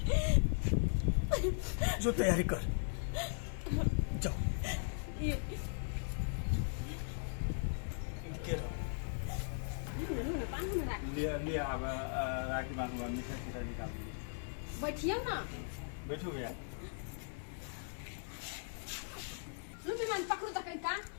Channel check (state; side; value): silent; right; 52 dB below the other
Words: जो तैयारी कर जाओ के रहो। लूना पानी में राख ले अब राखी बांधूंगा, मीठा सीधा निकाल दीजिए। बैठियो ना। बैठो भैया। रुपी मान पकड़ू तक का